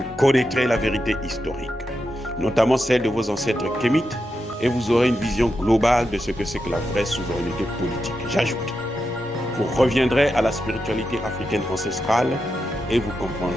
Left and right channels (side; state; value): both; normal; correlation 0.87